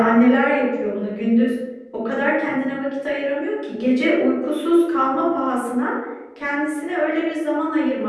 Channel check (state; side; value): identical; both; correlation 1.00